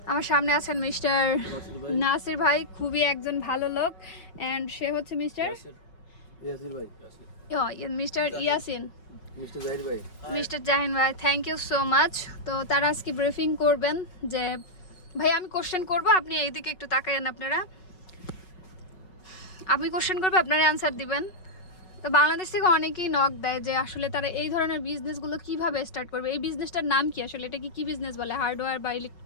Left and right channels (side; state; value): right; late; 5.3 ms